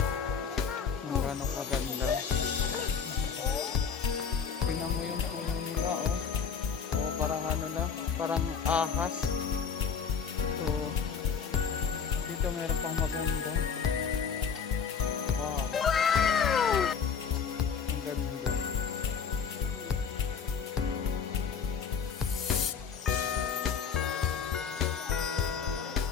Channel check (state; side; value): quieter; right; 6.4 dB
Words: kung gano'ng kaganda. Tingnan mo yung puno nila, oh. O parang ano na, parang ahas. So, dito meron pang maganda. Wow! Ang ganda.